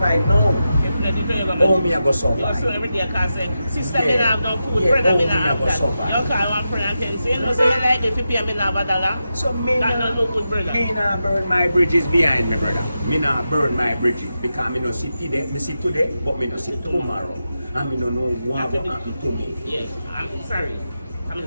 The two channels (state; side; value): inverted; both; correlation -0.89